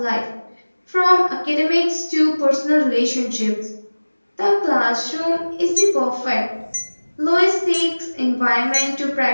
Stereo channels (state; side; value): inverted; both; correlation -1.00